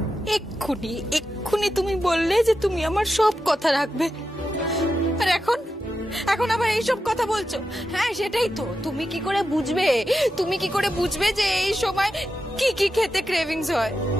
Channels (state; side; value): normal; both; correlation 0.89